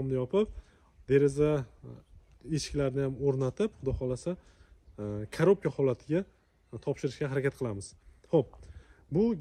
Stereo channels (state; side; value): identical; both; correlation 1.00